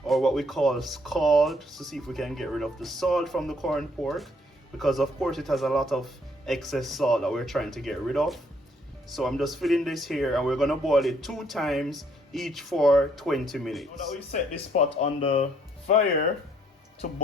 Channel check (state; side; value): normal; both; correlation 0.67